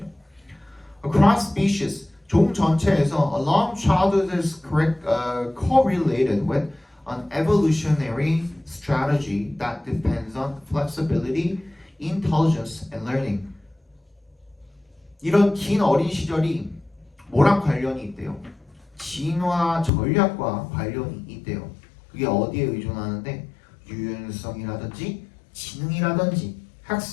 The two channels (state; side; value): drops out; right; at 19.9 s